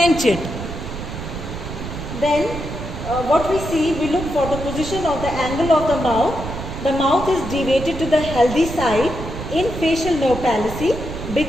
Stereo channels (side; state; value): right; noise; rumble, 8 dB below the sound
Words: it. Then what we see, we look for the position of the angle of the mouth. The mouth is deviated to the healthy side in facial nerve palsy